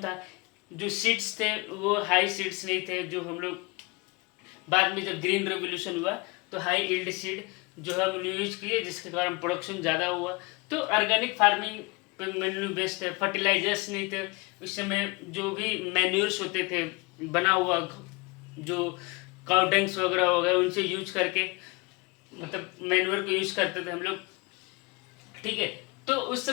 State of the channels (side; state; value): right; quieter; 26.7 dB